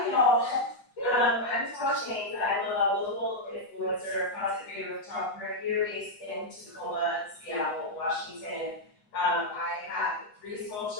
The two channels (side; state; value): right; late; 7.9 ms